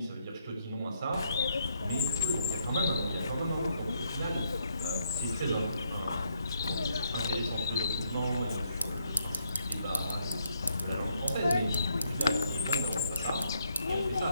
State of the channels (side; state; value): both; inverted; correlation -0.74